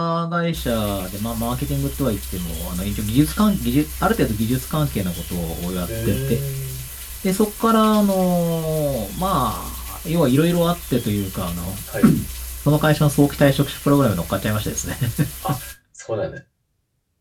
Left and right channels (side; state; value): both; identical; correlation 1.00